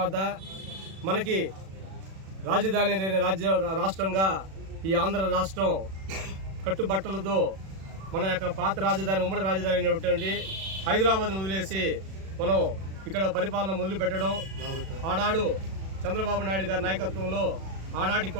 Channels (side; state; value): left; late; 37 ms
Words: మనకి రాజధాని లేని రాష్ట్రంగా ఈ ఆంధ్ర రాష్ట్రం కట్టుబట్టలతో మన యొక్క పాత రాజధాని ఉమ్మడి రాజధాని అనేటువంటి హైదరాబాద్ను వదిలేసి మనం ఇక్కడ పరిపాలన మొదలుపెట్టడం, ఆనాడు చంద్రబాబు నాయుడు గారి నాయకత్వంలో ఆనాటి